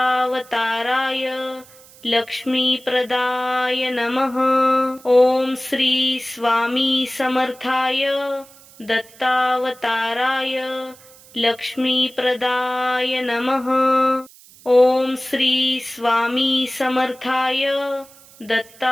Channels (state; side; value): noise; right; hiss, 24 dB below the sound